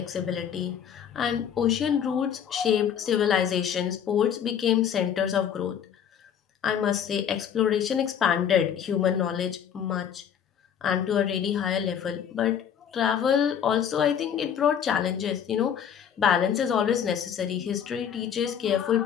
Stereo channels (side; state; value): right; quieter; 8.5 dB